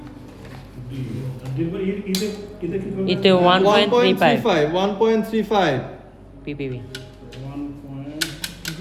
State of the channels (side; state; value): both; identical; correlation 1.00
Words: ইতে 1.35 1.35 ppb